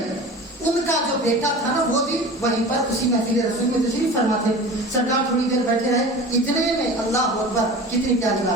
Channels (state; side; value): normal; both; correlation 0.36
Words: ان کا جو بیٹا تھا نا وہ بھی وہیں پر اسی محفل رسول میں تشریف فرما تھے. سرکار تھوڑی دیر بیٹھے رہے, اتنے میں اللہ اکبر, کتنی پیاری